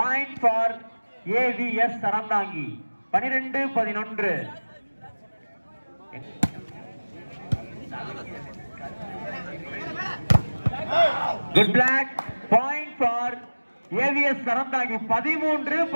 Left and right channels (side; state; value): both; inverted; correlation -1.00